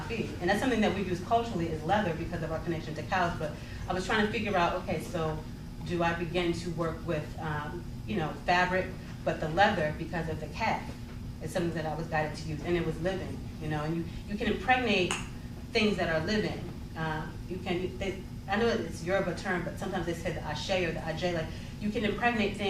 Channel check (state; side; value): identical; both; correlation 1.00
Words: And that's something that we use culturally, is leather, because of our connection to cows. But I was trying to figure out, okay, so do I begin to work with, fabric, but the leather, because of the calf, is something that I was guided to use, and it was living, and you can impregnate things that are living. I know it's Yoruba term, but sometimes they say the ashe or the ajay, like you can impregnate